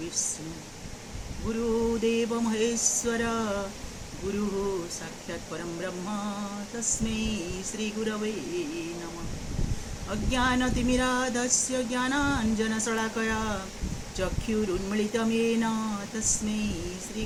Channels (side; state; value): both; identical; correlation 1.00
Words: गुरुदेव महेश्वर गुरुः साक्षात् परं ब्रह्म तस्मै श्रीगुरवे नमः। अज्ञानतिमिराधस्य ज्ञानाञ्जनशलाकया चक्षुरुन्मीलितं येन तस्मै